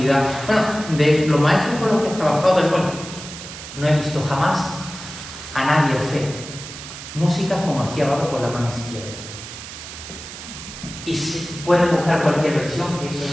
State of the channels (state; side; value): noise; right; hiss, 12 dB below the sound